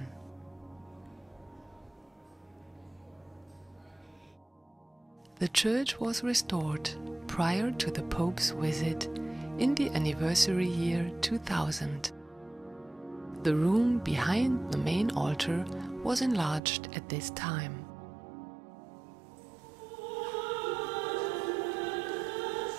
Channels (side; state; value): left; drops out; at 16.6 s